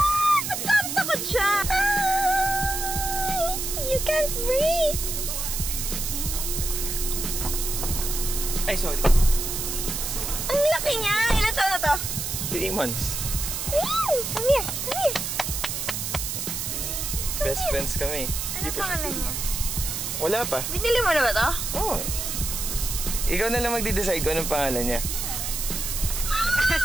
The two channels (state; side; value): noise; right; hiss, 3 dB below the sound